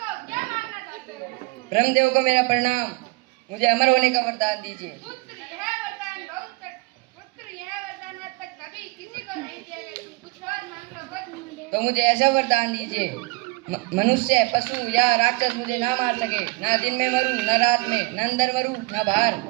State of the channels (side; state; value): left; quieter; 24.7 dB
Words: ब्रह्मदेव को मेरा प्रणाम, मुझे अमर होने का वरदान दीजिए। तो मुझे ऐसा वरदान दीजिए, मनुष्य, पशु या राक्षस मुझे ना मार सके। ना दिन में मरूं, न रात में, न अंदर मरूं, न बाहर,